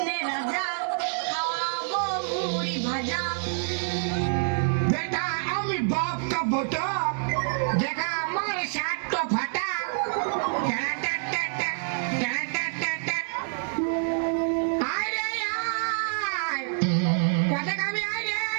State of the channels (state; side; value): silent; left; digital silence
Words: রাজা, খাওয়াবো মুড়ি ভাজা। बेटा আমি বাপ का बेटा देखा हमारे साथ तो फटा अरे यार कैसे कभी आए